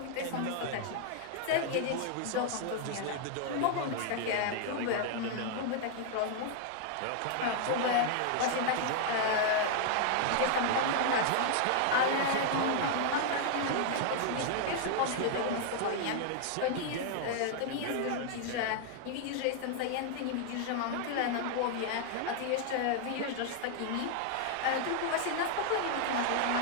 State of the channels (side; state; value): both; different; correlation 0.00